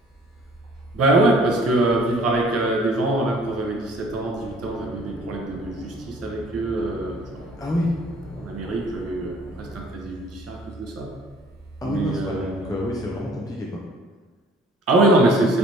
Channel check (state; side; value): normal; both; correlation 0.54